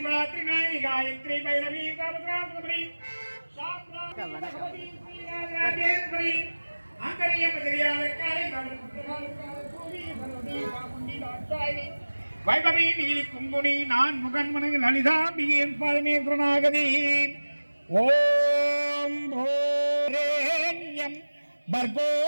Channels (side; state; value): both; inverted; correlation -1.00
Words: नायी गायत्री भैरवी सावित्री शास्त्रादेश्वरी अंतरिय मदरियालकाली वैभवी नीली कुंभुनी नान मुगन मन ललिता बियेन परमेश्वरनागदी ओम भोरेण्यम